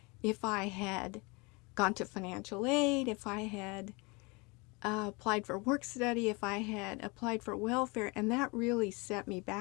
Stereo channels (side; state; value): right; quieter; 27.8 dB